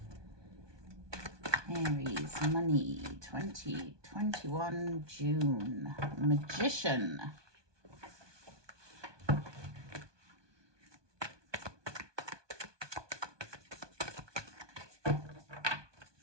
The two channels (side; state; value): left; late; 1.2 ms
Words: Aries, money, 2021 June. Magician.